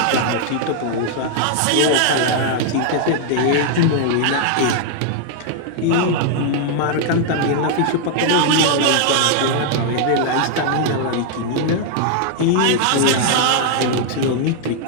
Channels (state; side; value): different; both; correlation -0.01